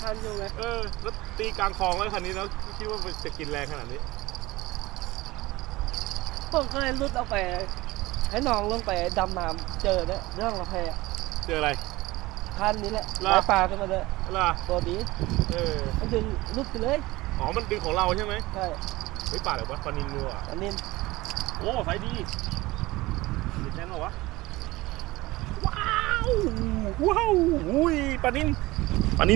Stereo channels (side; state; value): left; quieter; 19.7 dB